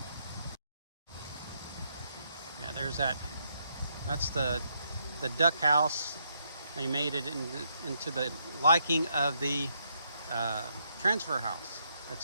Yeah, there's that's the duck house. They made it into the liking of the transfer house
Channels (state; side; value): inverted; both; correlation -0.77